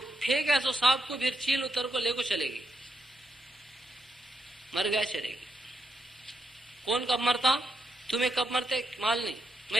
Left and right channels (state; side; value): normal; both; correlation 0.81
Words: پھینکا سو سانپ کو، پھر چیل اتر کو لے کو چلے گی، مر گیا چلے گی۔ کون کب مرتا؟ تمہیں کب مرتے معلوم نہیں،